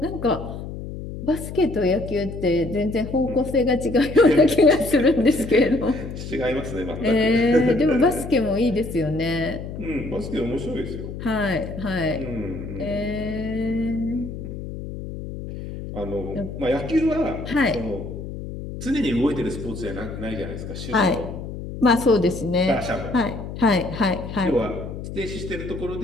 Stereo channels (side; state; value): left; noise; hum, 9 dB below the sound